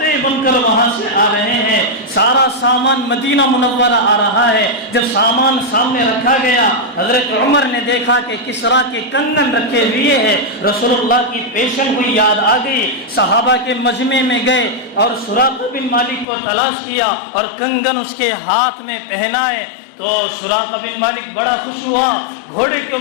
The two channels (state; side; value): drops out; right; at 16.2 s